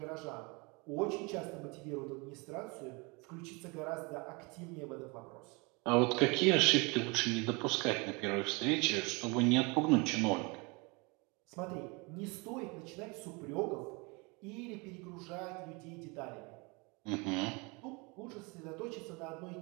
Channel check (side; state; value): left; quieter; 28.7 dB